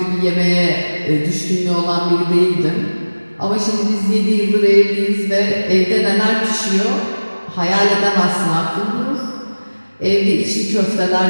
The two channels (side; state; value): both; inverted; correlation -1.00